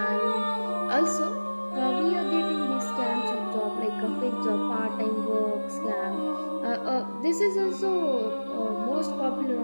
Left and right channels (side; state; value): both; inverted; correlation -1.00